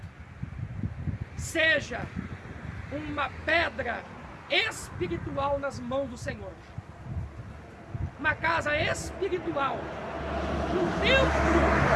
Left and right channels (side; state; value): both; identical; correlation 1.00